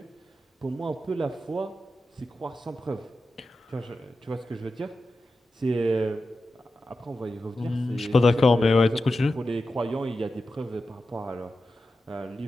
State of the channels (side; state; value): both; normal; correlation 0.91